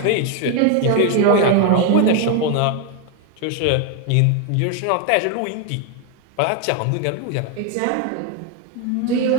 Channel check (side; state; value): both; different; correlation 0.01